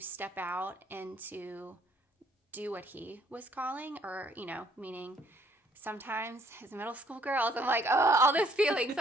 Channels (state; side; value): normal; both; correlation 0.64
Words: out and to do what he was calling, or, you know, meaning sometimes as middle school girls, I'm like, oh, all those feelings